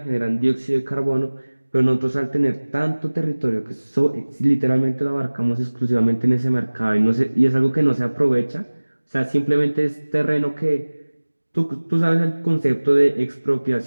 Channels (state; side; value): inverted; both; correlation -1.00